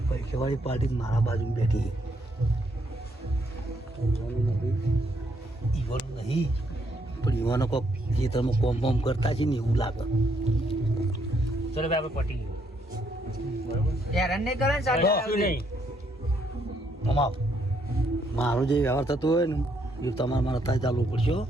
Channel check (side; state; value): both; normal; correlation 0.73